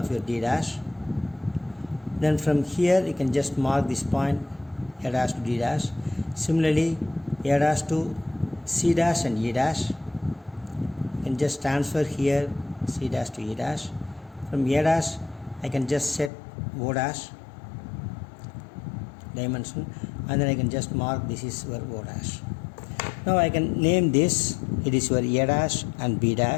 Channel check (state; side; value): drops out; right; at 16.3 s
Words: your D dash. Then from here you can just mark this point A dash to D dash. Similarly A dash to C dash and E dash. You can just transfer here C dash to E dash. From A dash I can just set O dash dimension, and then I can just mark this is your O dash. Now I can name this. It is your A dash and B